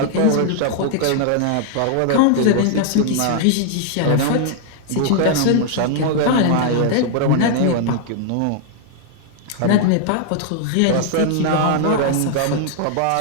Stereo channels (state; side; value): different; both; correlation 0.00